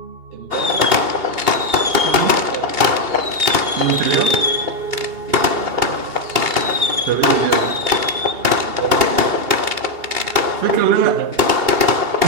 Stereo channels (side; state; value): left; late; 2.8 ms